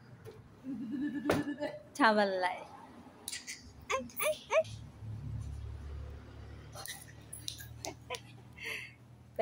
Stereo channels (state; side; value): identical; both; correlation 1.00